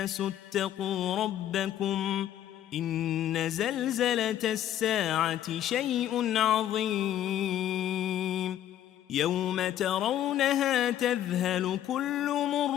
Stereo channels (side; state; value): right; quieter; 11.6 dB